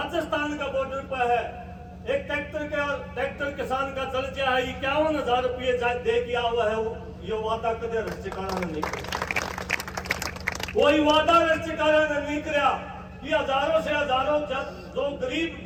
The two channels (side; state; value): both; identical; correlation 1.00